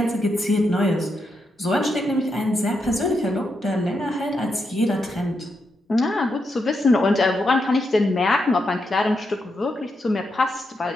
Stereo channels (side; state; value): both; normal; correlation 0.83